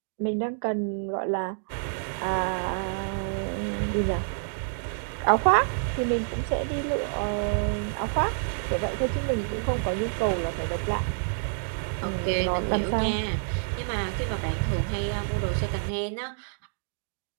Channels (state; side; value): silent; left; digital silence